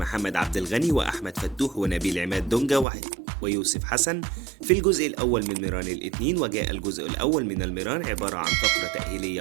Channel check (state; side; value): drops out; left; at 2.9 s